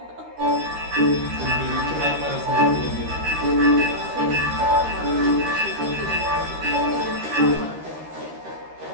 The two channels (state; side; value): late; left; 13 ms